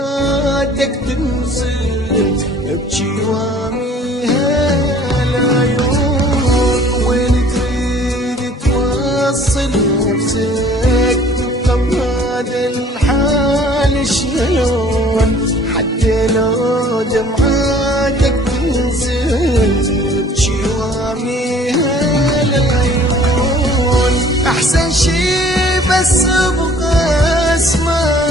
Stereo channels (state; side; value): normal; both; correlation 0.53